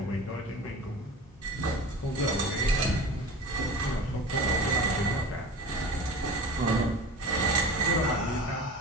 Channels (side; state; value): both; normal; correlation 0.35